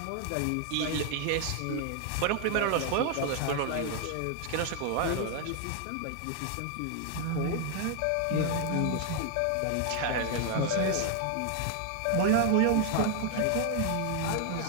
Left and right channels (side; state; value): both; different; correlation 0.00